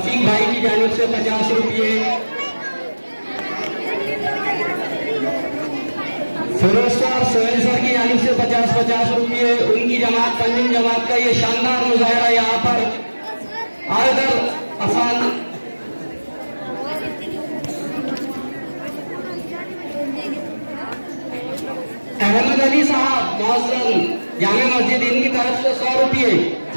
भाई की जानिब से 50 रुपये, फिरोज सर सोहेल सर की जानिब से 50-50 रुपये। उनकी जमात पंजिम जमात का ये शानदार मुजाहरा यहाँ पर आयदर आसान अहमद अली साहब मौजूद जामे मस्जिद, इनकी तरफ से 100 रुपये।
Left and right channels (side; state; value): both; inverted; correlation -1.00